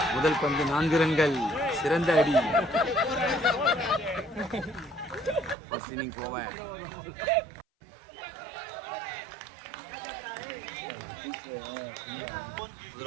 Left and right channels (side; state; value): left; drops out; at 5.6 s